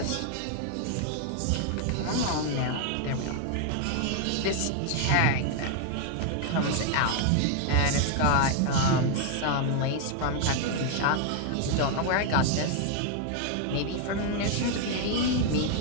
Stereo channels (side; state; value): both; different; correlation 0.00